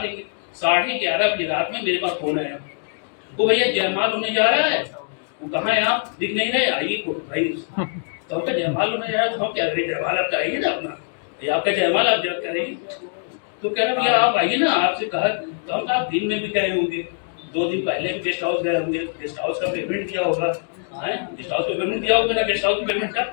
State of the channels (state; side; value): silent; right; digital silence